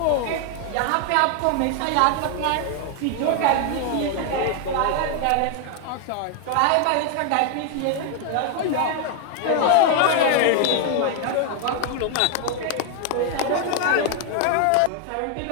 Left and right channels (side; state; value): both; different; correlation 0.00